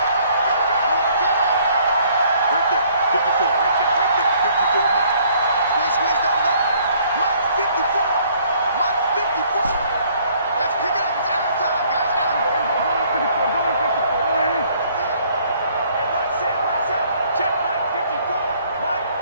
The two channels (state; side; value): inverted; both; correlation -0.62